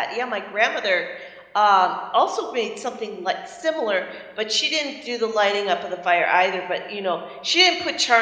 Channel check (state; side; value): identical; both; correlation 1.00